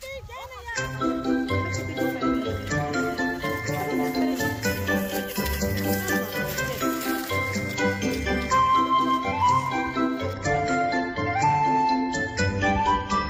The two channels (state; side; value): identical; both; correlation 1.00